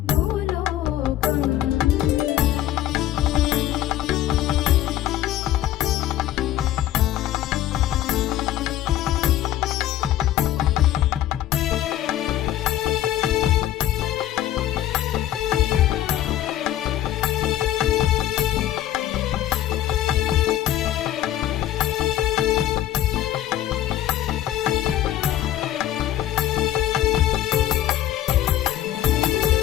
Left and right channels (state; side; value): quieter; right; 12.8 dB